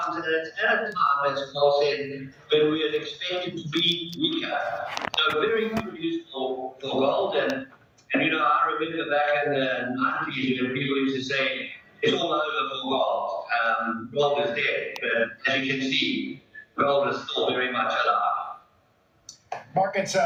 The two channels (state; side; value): identical; both; correlation 1.00